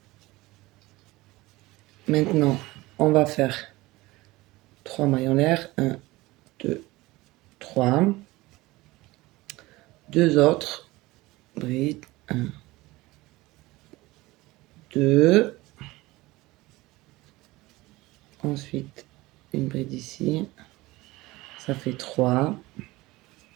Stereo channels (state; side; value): quieter; left; 20.0 dB